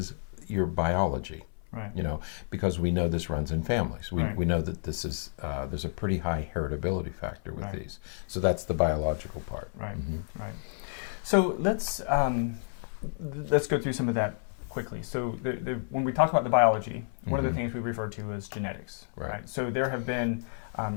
your biology. You know, because we know this runs in families. We know that this is there's a pretty high heritability factor with these. So that's the biological part. Right. So let's go through some of that quickly. So when we talk about the biology, one of the things we refer to is genetics. Right. So there have been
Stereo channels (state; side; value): silent; right; 58 dB below the other